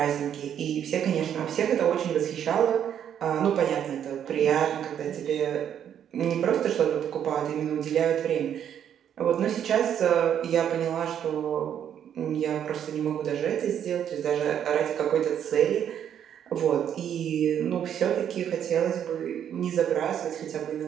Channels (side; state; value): left; quieter; 9.3 dB